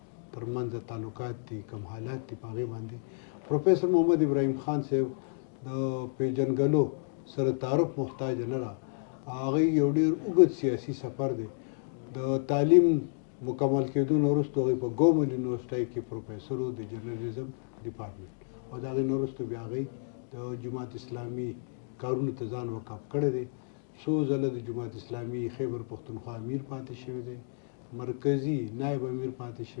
ترمنځ تعلقات دي، کوم حالات دي، په هغې باندې. پروفیسر محمد ابراهیم خان صاحب د پیژنګلو سره تعارف محتاج نه ده. هغوی یو ډېر اوږد سیاسي سفر دی. د تعلیم مکمل کېدو نه وروسته هغوی په ګومل یونیورسټۍ کې پروفیسر و د جرنالیزم ډپارټمنټ، او د هغې نه وروسته بیا هغوی د جماعت اسلامي کارونو ته ځان وقف کړی دی. څو ځله د جماعت اسلامي خیبر پښتونخوا امیر پاتې شوی دی، مرکزي نایب امیر پاتې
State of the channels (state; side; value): silent; right; digital silence